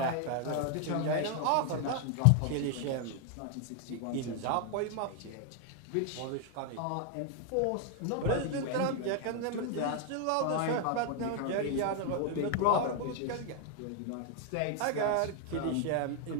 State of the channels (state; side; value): different; both; correlation 0.00